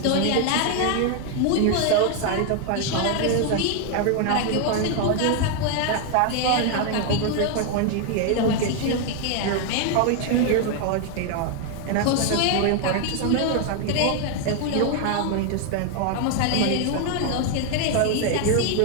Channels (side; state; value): both; different; correlation 0.00